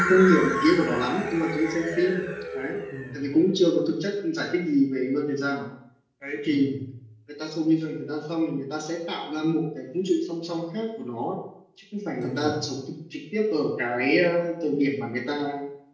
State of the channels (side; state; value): both; identical; correlation 1.00